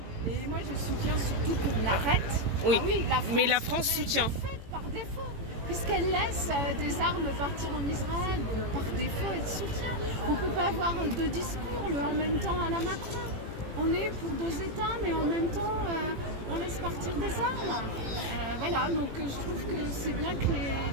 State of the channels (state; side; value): late; left; 18 ms